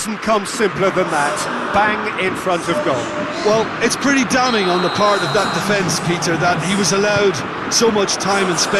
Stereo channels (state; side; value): identical; both; correlation 1.00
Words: come simpler than that. Bang in front of goal. Well, it's pretty damning on the part of that defence, Peter, that he was allowed so much time and